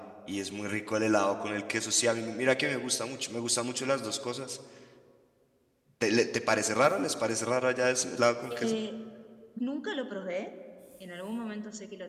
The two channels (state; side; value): identical; both; correlation 1.00